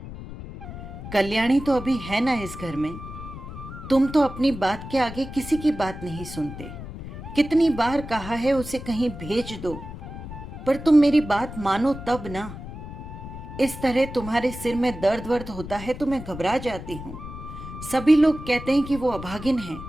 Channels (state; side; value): noise; left; rumble, 11 dB below the sound